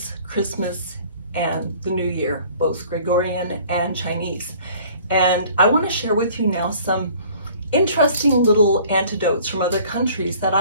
Christmas, and the New Year, both Gregorian and Chinese. And I want to share with you now some interesting little antidotes from other countries that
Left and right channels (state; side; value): inverted; both; correlation -0.52